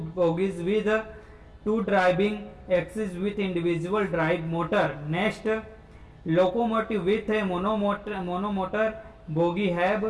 bogies with two driving axes with individual drive motor। Next, locomotive with a monomotor bogie have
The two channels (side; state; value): both; identical; correlation 1.00